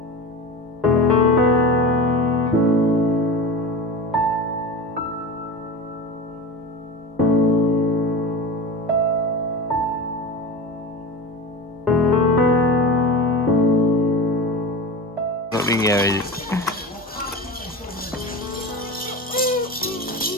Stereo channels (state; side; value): normal; both; correlation 0.27